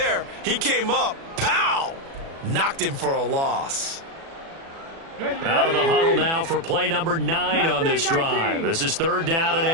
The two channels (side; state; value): left; late; 36 ms